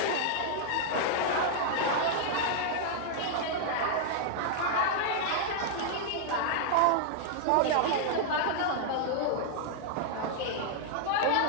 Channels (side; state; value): both; different; correlation -0.01